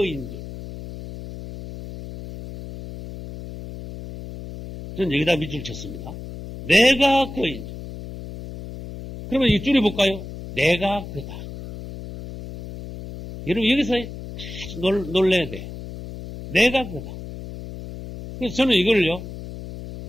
줄. 저는 여기다 밑줄 쳤습니다. 내가 그인 줄. 그러면 이 줄여볼까요? 내가 그다. 여러분 여기서 아주 놀래야 돼. 내가 그다. 그래서 저는 이걸요,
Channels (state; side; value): noise; left; hum, 11 dB below the sound